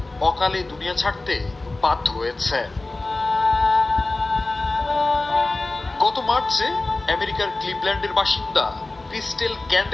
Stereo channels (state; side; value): quieter; right; 3.1 dB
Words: অকালে দুনিয়া ছাড়তে বাধ্য হয়েছে। গত মার্চে আমেরিকার ক্লিভল্যান্ডের বাসিন্দা ক্রিস্টেল